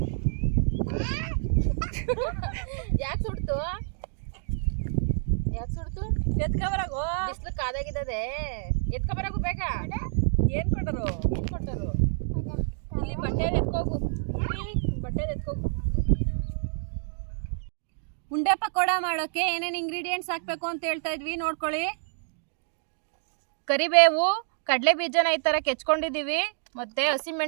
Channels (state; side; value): silent; left; digital silence